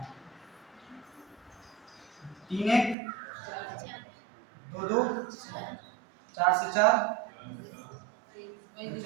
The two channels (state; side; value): drops out; left; at 3.0 s